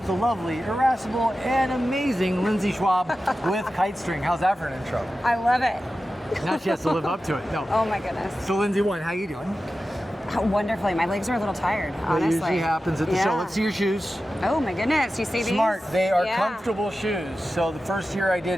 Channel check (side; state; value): both; normal; correlation 0.93